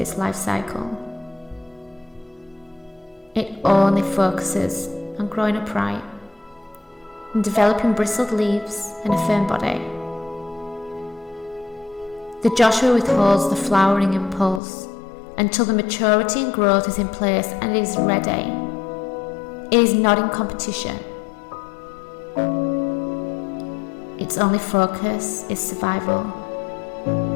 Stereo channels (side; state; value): right; drops out; at 14.6 s